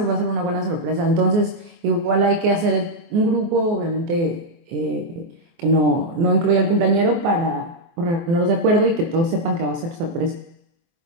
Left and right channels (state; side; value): late; left; 24 ms